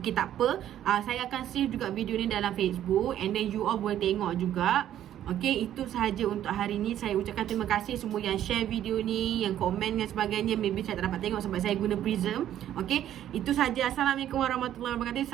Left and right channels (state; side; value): quieter; left; 11.4 dB